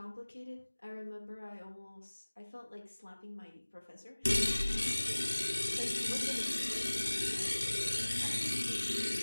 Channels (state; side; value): inverted; both; correlation -1.00